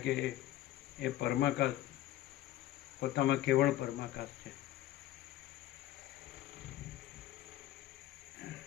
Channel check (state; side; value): quieter; right; 14.1 dB